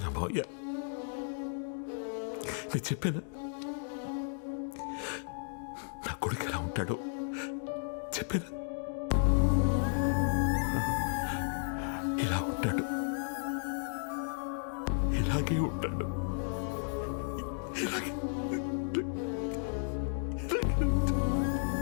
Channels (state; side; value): silent; right; digital silence